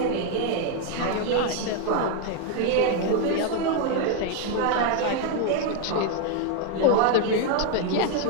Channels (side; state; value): both; different; correlation 0.01